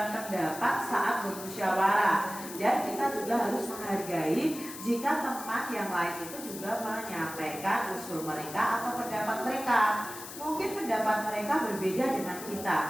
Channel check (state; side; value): noise; left; hiss, 12 dB below the sound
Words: pendapat saat bermusyawarah. Dan kita juga harus menghargai jika teman yang lain itu juga menyampaikan usul mereka atau pendapat mereka. Mungkin pendapat mereka berbeda dengan kita.